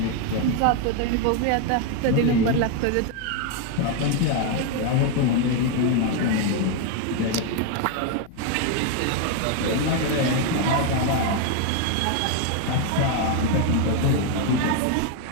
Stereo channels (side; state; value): both; different; correlation 0.01